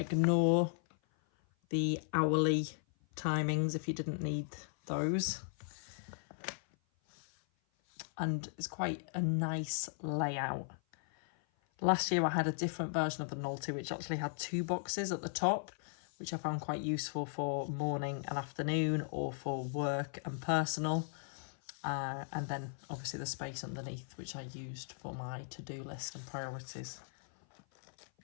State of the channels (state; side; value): silent; right; 53 dB below the other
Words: the hourly timings if you didn't need those. And it's quite a nice layout. Last year I had a different version of the Nolty, which actually had two boxes at the top, which I found quite useful for morning and afternoon, or for work and personal. And then obviously the space underneath, which I used for my to-do list and priorities.